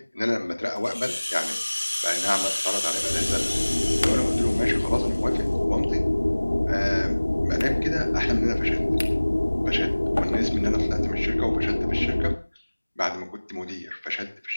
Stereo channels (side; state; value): both; inverted; correlation -1.00